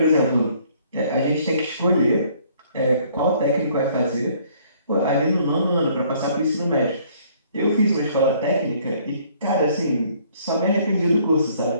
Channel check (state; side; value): inverted; both; correlation -0.61